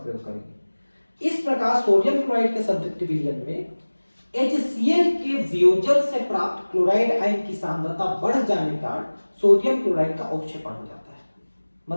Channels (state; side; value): inverted; both; correlation -1.00